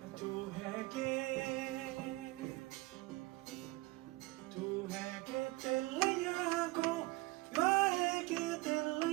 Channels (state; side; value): quieter; left; 21.3 dB